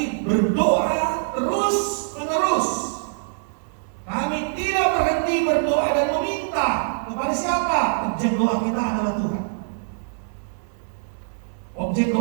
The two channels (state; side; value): silent; left; digital silence